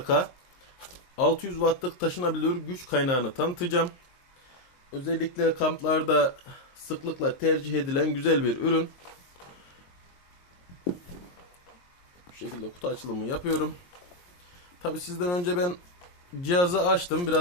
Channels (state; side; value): late; right; 22 ms